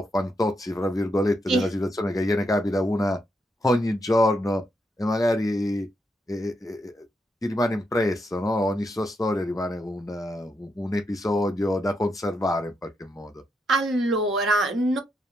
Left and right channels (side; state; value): both; normal; correlation 0.81